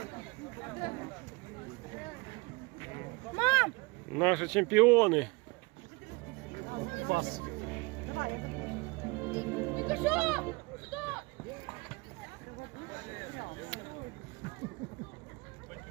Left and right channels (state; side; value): quieter; left; 26.2 dB